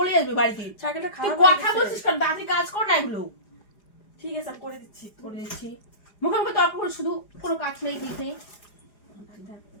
আসবে বাড়িতে। সাইকেলটা তুই খারাপ কথা বলছিস কেন? তাড়াতাড়ি কাজ কর না এগুলো। ঠিক আছে, আমি করে দিচ্ছি। মুখে মুখে তর্ক করে শুধু, কোনো কাজ নেই কিছু নেই।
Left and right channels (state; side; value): late; right; 4.9 ms